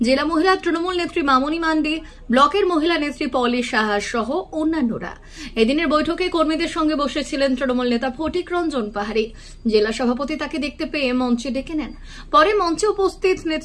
জেলা মহিলা তৃণমূল নেত্রী মামনি মান্ডি, ব্লকের মহিলা নেত্রী পলি সাহা সহ অন্যান্যরা। এদিনের বৈঠকে কর্মীদের সঙ্গে বসেছিলেন তৃণমূল নেতা ফটিক রঞ্জন পাহাড়ি। জেলা সভাপতি তাকে দেখতে পেয়ে মঞ্চে ডেকে নেন। পরে মঞ্চে উপস্থিত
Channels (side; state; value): both; identical; correlation 1.00